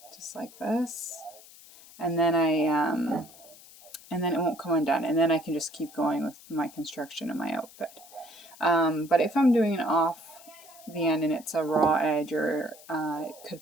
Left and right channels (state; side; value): noise; left; hiss, 21 dB below the sound